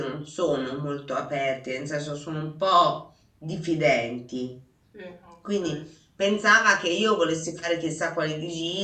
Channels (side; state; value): both; identical; correlation 1.00